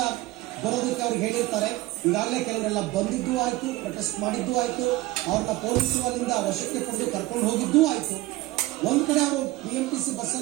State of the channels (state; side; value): quieter; left; 18.7 dB